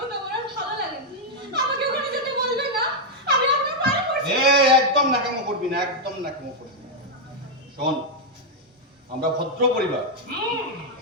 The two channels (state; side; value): normal; both; correlation -0.02